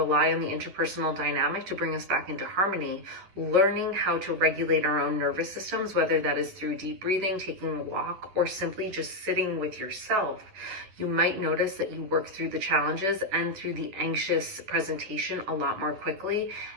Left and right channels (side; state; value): left; late; 10 ms